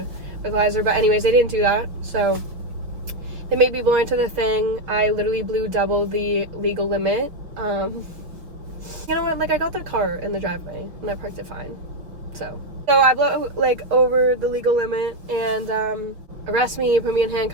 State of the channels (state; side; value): late; left; 5.9 ms